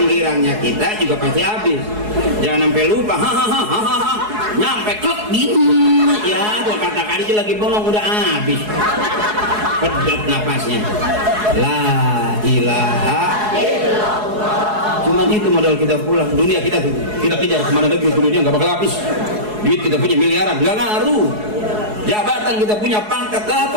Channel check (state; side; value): late; left; 4.7 ms